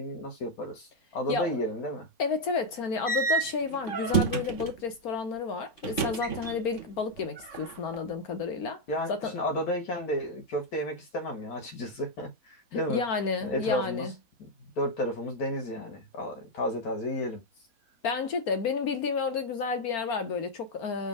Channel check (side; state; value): right; late; 4.4 ms